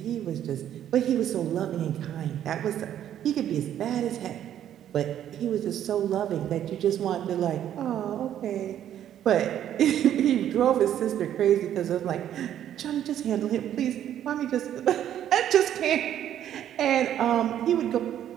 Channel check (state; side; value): quieter; left; 10.8 dB